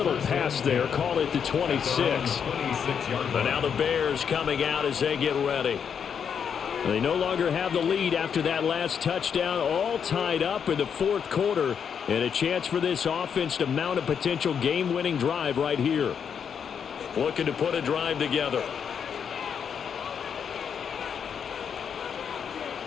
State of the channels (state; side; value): quieter; right; 7.4 dB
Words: pass there. Call it the 26. But now the Bears coming out as they get ready. They no longer have the lead after that last touchdown. All tied up in the 4th quarter. And a chance for this offense to mount a potential game-winning drive right here. Looking to put a drive together.